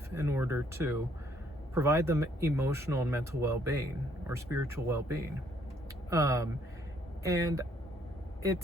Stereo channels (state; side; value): normal; both; correlation 0.67